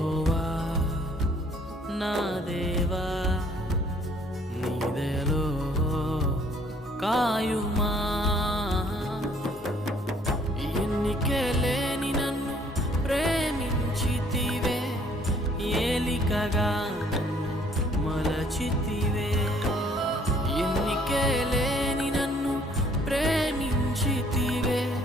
నా దేవా నీ దయలో కాయుమా ఎన్నికే లేని నన్ను ప్రేమించితివే ఏలికగా మలచితివే ఎన్నికే లేని నన్ను ప్రేమించితివే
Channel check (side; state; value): both; normal; correlation 0.60